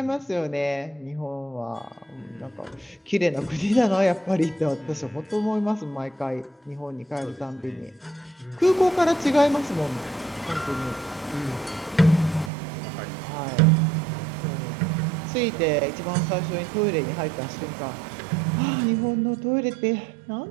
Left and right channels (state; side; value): drops out; left; at 12.5 s